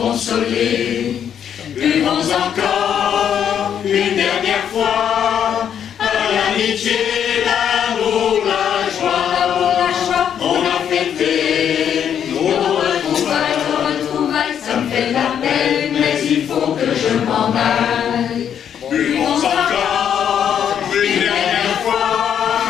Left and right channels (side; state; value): right; quieter; 8.8 dB